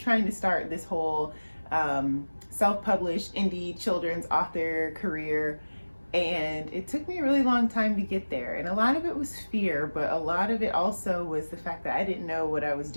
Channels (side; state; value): both; inverted; correlation -1.00